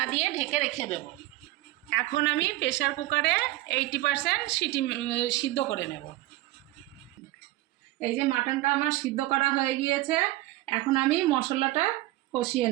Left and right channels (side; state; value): left; quieter; 17.4 dB